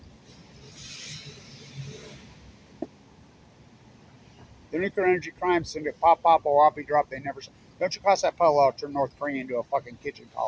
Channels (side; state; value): both; identical; correlation 1.00